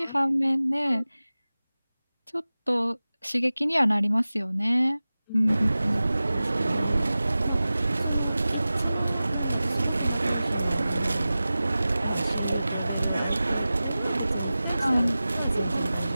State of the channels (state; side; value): inverted; both; correlation -0.96